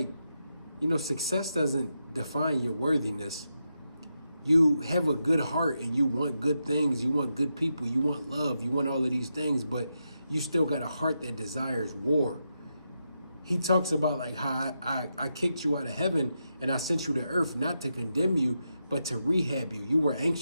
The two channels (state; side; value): inverted; both; correlation -0.86